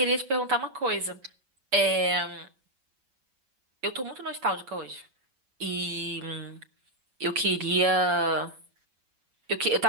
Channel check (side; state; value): left; late; 7.1 ms